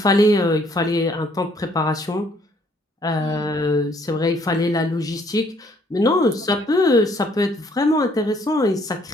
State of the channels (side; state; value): both; normal; correlation 0.64